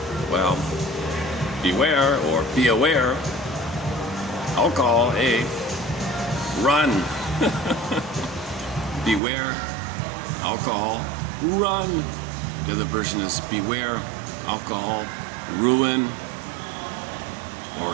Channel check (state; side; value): drops out; left; at 9.2 s